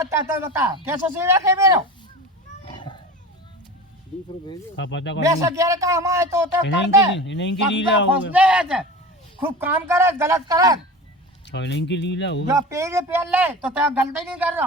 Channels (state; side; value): normal; both; correlation 0.33